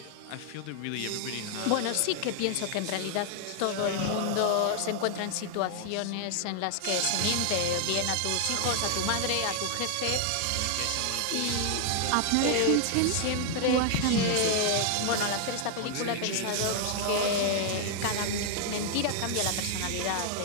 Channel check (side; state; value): both; different; correlation 0.00